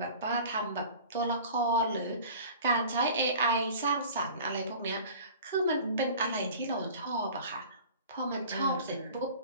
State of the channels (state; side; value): inverted; both; correlation -0.42